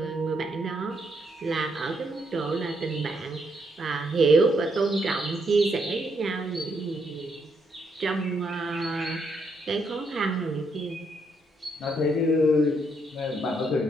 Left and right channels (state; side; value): normal; both; correlation 0.75